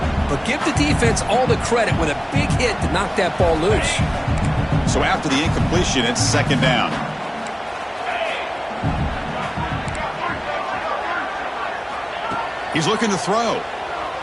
But give the defense all the credit with a big hit to knock that ball loose. So after the incompletion, it's 2nd down. He's looking to throw.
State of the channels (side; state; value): both; identical; correlation 1.00